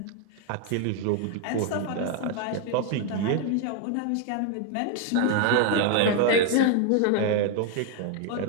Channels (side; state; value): both; different; correlation 0.01